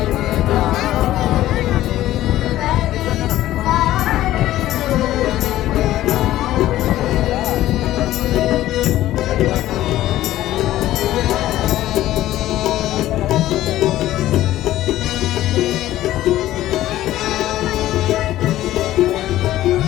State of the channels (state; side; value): quieter; right; 14.4 dB